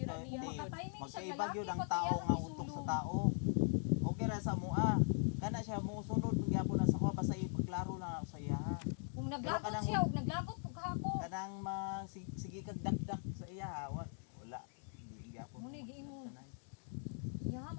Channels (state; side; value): silent; right; 51 dB below the other